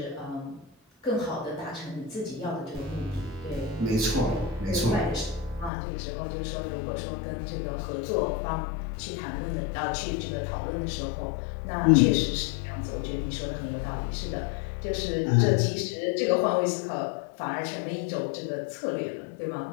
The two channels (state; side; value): drops out; right; at 5.7 s